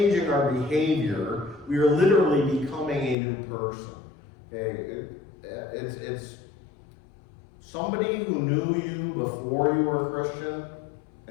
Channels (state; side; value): drops out; right; at 3.2 s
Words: our behavior. We are literally becoming a new person. Okay? It's somebody who knew you before you were a Christian,